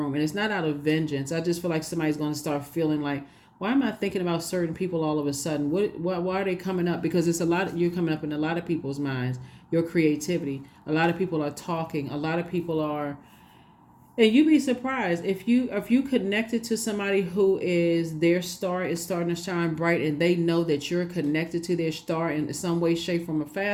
And it's not out of vengeance. I just feel like somebody's going to start feeling like, why am I thinking about certain people all of a sudden? Why are they coming up? Because it's you're coming up in a lot of people's minds, your creativity. A lot of people are talking. A lot of people are. And you'd be surprised if you connected to somebody who is, their star is starting to shine bright, and they know that you're connected to their star in some way, shape, form, or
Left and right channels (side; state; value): both; identical; correlation 1.00